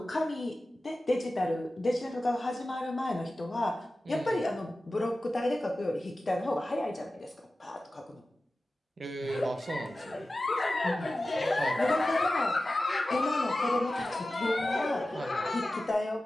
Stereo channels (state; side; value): normal; both; correlation 0.95